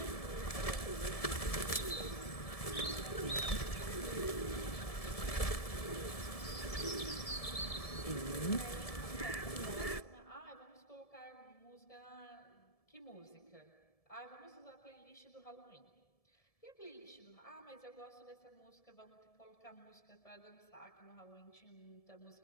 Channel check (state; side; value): late; right; 1.7 ms